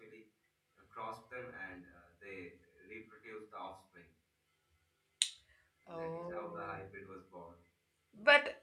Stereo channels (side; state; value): both; identical; correlation 1.00